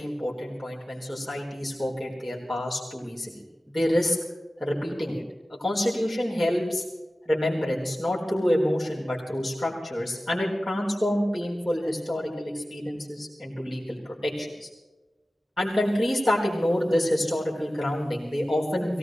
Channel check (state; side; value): normal; both; correlation 0.96